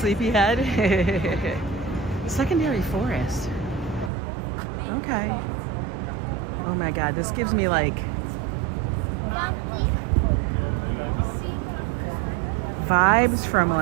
Secondary Forest. Okay. Oh my God, this gives me like vibes from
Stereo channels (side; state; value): left; drops out; at 4.1 s